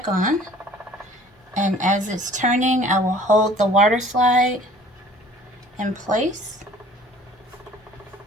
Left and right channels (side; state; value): both; normal; correlation 0.51